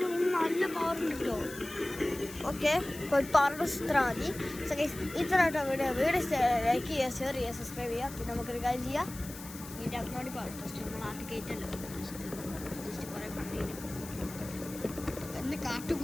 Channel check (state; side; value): noise; left; hiss, 14 dB below the sound